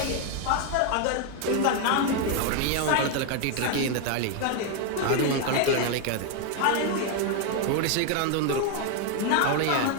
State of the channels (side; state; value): both; different; correlation 0.01